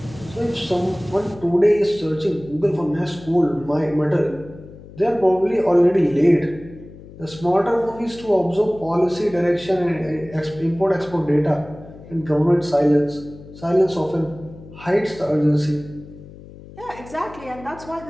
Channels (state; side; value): noise; left; hum, 18 dB below the sound